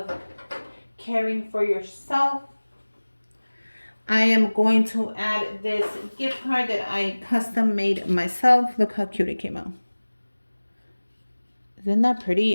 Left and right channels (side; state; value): both; inverted; correlation -1.00